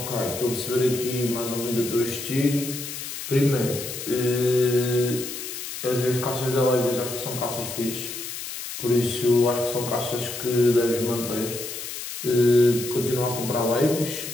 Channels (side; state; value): left; noise; hiss, 8 dB below the sound